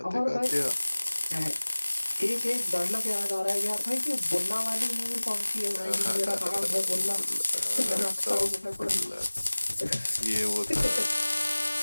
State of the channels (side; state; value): both; inverted; correlation -1.00